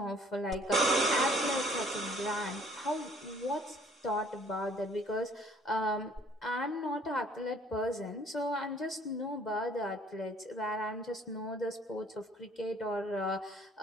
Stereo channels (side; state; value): both; normal; correlation 0.57